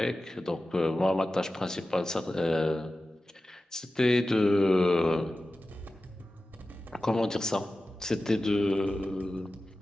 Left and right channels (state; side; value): normal; both; correlation 0.94